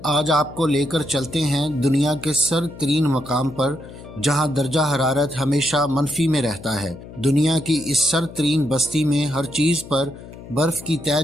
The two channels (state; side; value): noise; left; hum, 16 dB below the sound